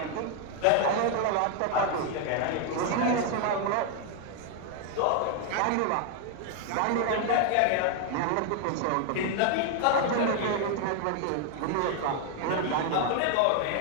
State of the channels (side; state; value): both; different; correlation 0.00